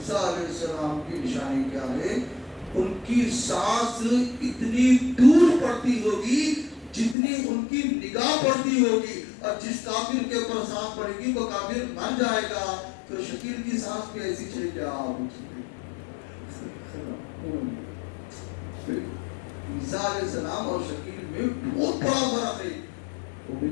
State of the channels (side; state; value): right; drops out; at 7.2 s